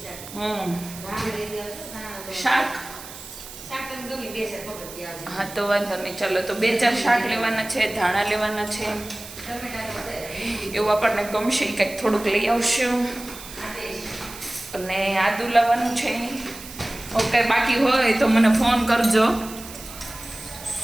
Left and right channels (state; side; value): noise; right; hiss, 14 dB below the sound